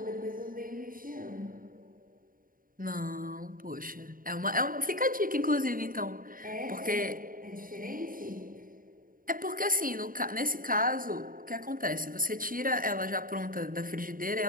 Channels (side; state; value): left; late; 0.41 ms